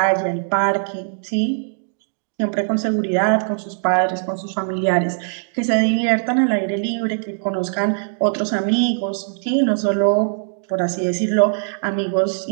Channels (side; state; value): left; silent; digital silence